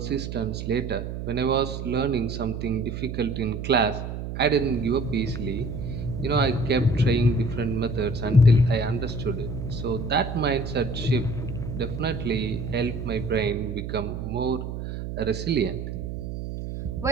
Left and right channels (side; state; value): right; noise; hum, 6 dB below the sound